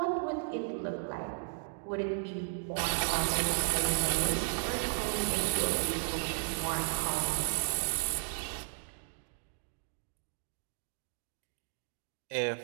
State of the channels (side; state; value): left; silent; digital silence